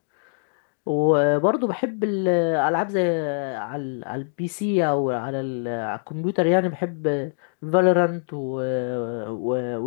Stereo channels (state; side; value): silent; right; digital silence